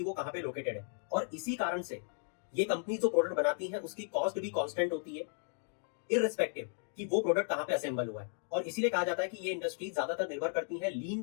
वो कहां पे लोकेटेड है। और इसी कारण से ये कंपनी जो प्रोडक्ट बनाती है उसकी कॉस्ट भी कांस्टेंट होती है, इररिस्पेक्टिव कि वो प्रोडक्ट कहां पे असेंबल हुआ है। और इसीलिए कहा जाता है कि ये इंडस्ट्री ज्यादातर निर्भर करती है लीन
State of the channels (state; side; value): silent; right; 54 dB below the other